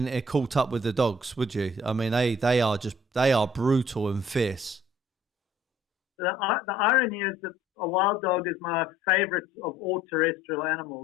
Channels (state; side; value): normal; both; correlation 0.57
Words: caught up with the dogs, would you? I mean, they are brutal and fierce. The irony is that a wild dog is my favorite of all terrestrial